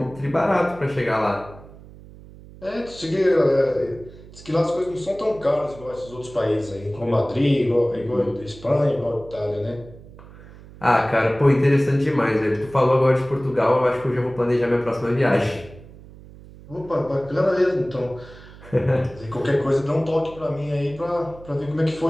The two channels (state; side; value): noise; right; hum, 19 dB below the sound